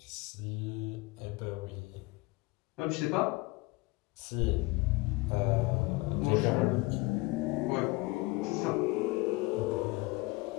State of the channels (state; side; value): quieter; right; 23.5 dB